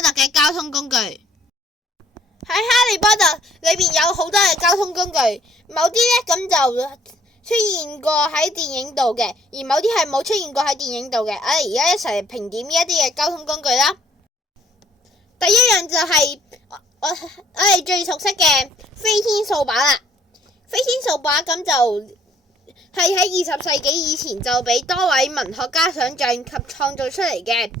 特嘅交通工具。喺哈利波特裏邊有好多嘅交通工具，某啲呢咁就出現過喺電影度嘅，而某啲係冇出現過喺電影度嘅。我哋而家一齊評點呢一啲嘅交通工具啦。第一樣就係我哋最熟悉嘅飛天掃把啦。飛天掃把咁就係喺20世紀以前就俾多位文學家想象及創造出嚟嘅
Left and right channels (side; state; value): both; normal; correlation 0.62